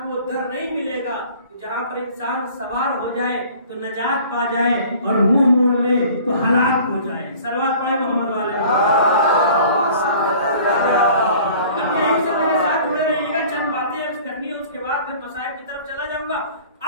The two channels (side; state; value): both; inverted; correlation -0.48